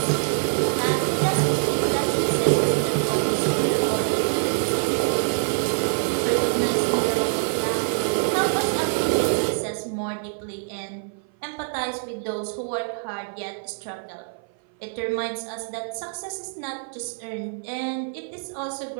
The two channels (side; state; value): left; silent; 57 dB below the other